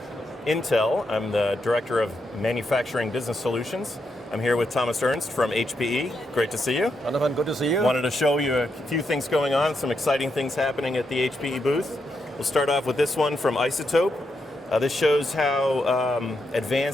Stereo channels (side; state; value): both; normal; correlation 0.82